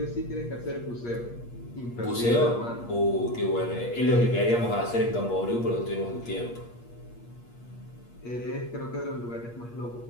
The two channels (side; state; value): right; late; 8.5 ms